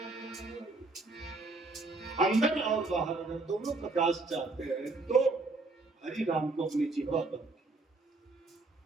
अंदर और बाहर अगर दोनों प्रकाश चाहते हैं तो हरि नाम को अपनी जीवा पर,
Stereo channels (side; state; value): left; quieter; 3.5 dB